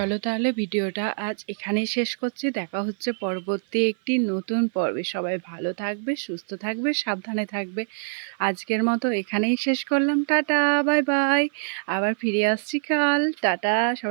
তাহলে ভিডিওটা আজ এখানেই শেষ করছি। দেখা হচ্ছে পরবর্তী একটি নতুন পর্বে। সবাই ভালো থাকবে, সুস্থ থাকবে, সাবধানে থাকবে। আজকের মতো এখানেই শেষ করলাম। Tata, bye bye. আবার ফিরে আসছি কাল। টাটা,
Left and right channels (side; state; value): left; silent; 56 dB below the other